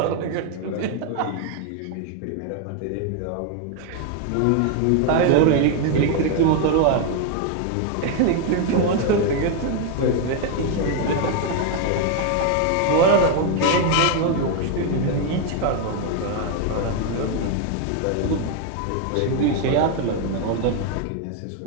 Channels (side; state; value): both; different; correlation 0.01